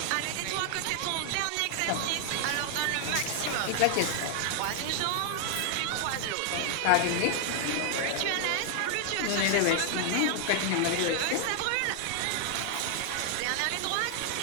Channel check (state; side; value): different; both; correlation 0.00